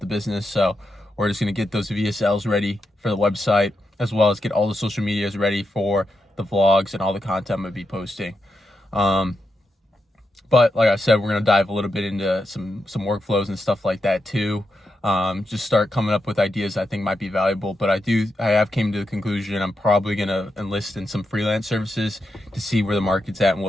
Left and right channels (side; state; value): both; normal; correlation 0.85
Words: business. So we're just gonna get those VSLs ready for the website, as well as get all the social medias ready for the vlogs and all the content I'm gonna be posting. But like I said, we're gonna dive a little bit into some workflows and stuff like that too. Just start coming up with ideas I think might be valuable. But I have came to the conclusion I'm probably gonna enlist in some freelance services to see where the market's at and